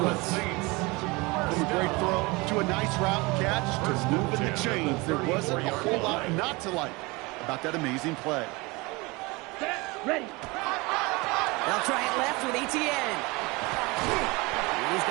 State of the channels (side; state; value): left; quieter; 24.9 dB